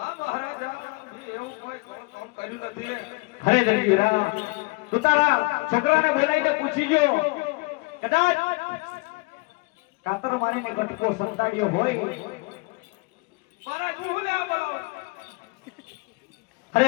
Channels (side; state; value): right; quieter; 26.5 dB